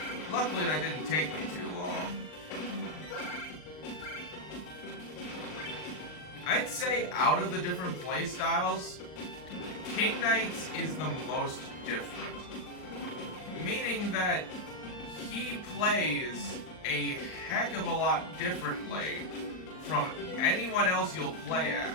Luckily that didn't take me too long. I'd say out of the different playstyles, King Knight's is the most different. Meaning that he plays a heck of a lot differently from anyone else you'll play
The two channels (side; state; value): right; late; 39 ms